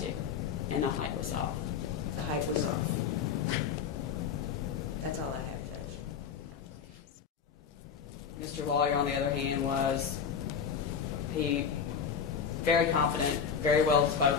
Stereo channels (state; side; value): quieter; right; 6.8 dB